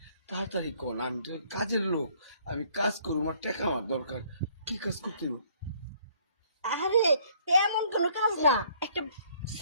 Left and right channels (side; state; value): both; inverted; correlation -0.61